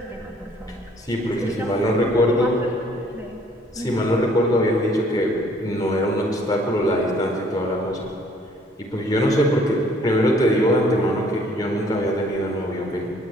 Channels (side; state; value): both; normal; correlation 0.60